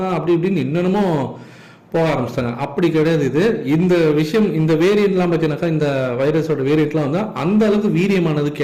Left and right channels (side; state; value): both; identical; correlation 1.00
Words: அப்படி இப்படின்னு இன்னமும் போக ஆரம்பிச்சிட்டாங்க. அப்படி கிடையாது. இது இந்த விஷயம், இந்த வேரியண்ட்லாம் பார்த்தீங்கன்னாக்கா, இந்த வைரஸோட வேரியண்ட்லாம் வந்து அந்த அளவுக்கு வீரியமானது